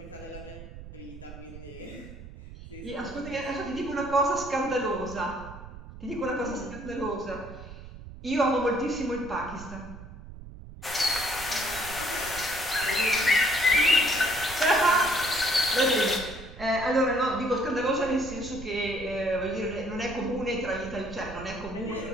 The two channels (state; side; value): noise; right; rumble, 14 dB below the sound